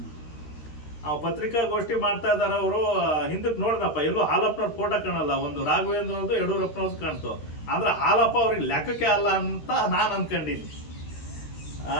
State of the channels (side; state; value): right; late; 13 ms